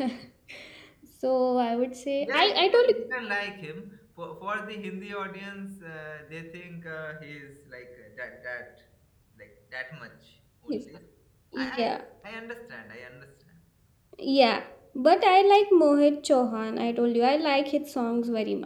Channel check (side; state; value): both; identical; correlation 1.00